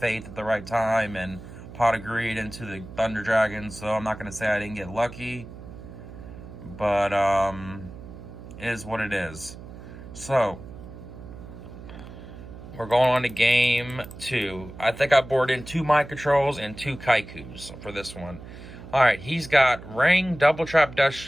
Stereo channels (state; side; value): noise; right; hum, 14 dB below the sound